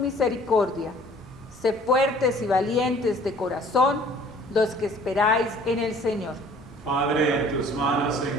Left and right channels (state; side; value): normal; both; correlation 0.53